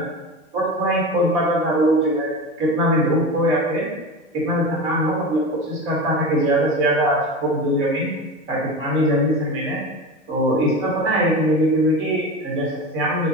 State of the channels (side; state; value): both; normal; correlation 0.27